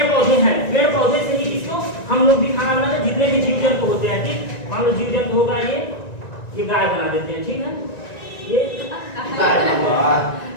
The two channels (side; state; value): right; late; 1.9 ms